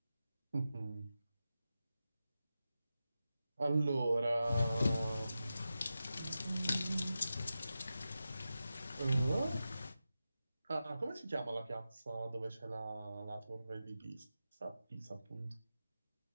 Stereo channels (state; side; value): inverted; both; correlation -0.92